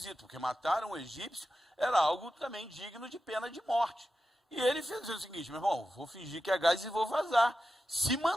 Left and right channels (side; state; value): both; normal; correlation 0.91